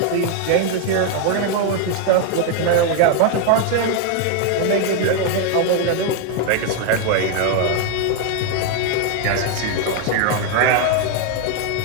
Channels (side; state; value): both; different; correlation 0.01